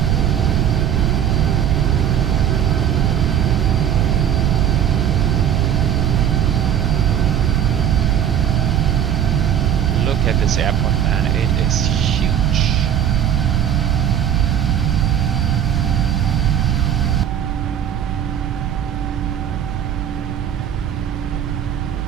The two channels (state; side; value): quieter; left; 9.5 dB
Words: Look at this airport, man. It is huge.